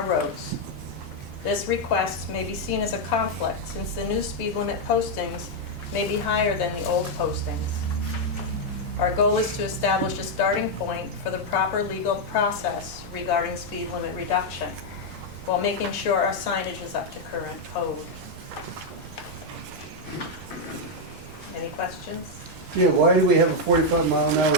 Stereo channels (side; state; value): both; normal; correlation 0.00